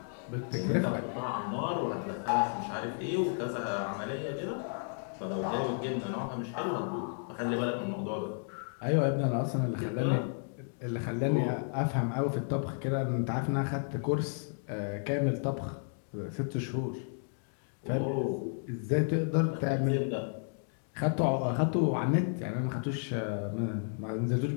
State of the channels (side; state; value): right; silent; 56 dB below the other